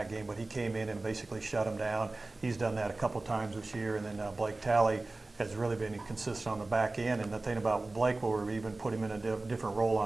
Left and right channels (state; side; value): quieter; left; 3.1 dB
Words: game, but he came in and basically shut him down. He's done that a couple times this year, and then Blake Talley has really been consistent on the back end. And the thing about Blake, where we even put him in a different role